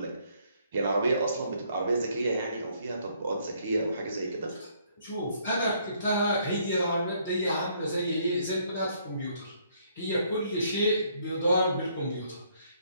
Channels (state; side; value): inverted; both; correlation -0.67